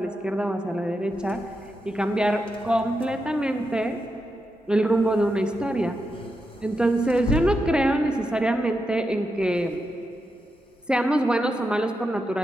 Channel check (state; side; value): normal; both; correlation 0.86